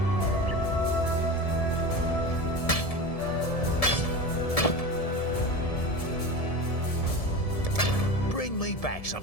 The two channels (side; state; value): right; late; 1.7 ms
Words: Bring me back